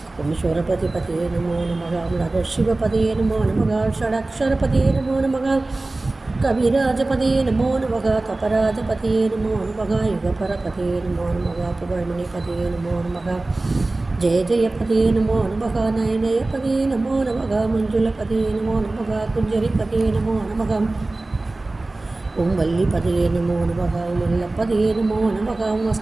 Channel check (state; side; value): quieter; left; 3.0 dB